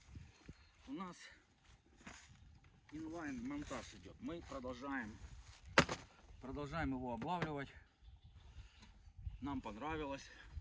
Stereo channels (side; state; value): both; identical; correlation 1.00